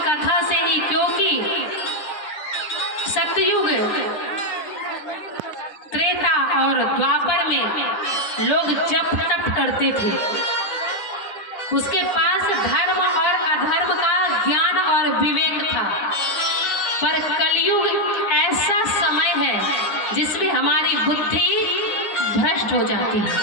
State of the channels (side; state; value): right; late; 10 ms